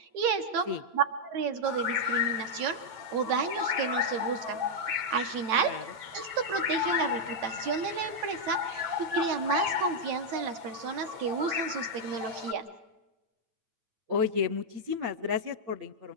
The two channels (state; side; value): late; left; 8.9 ms